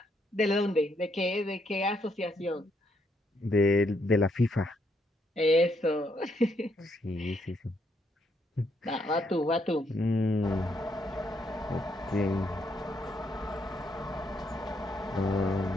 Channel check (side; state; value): both; normal; correlation 0.75